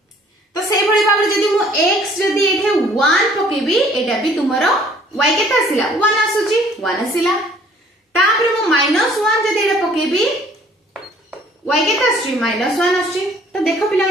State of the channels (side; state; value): both; normal; correlation 0.57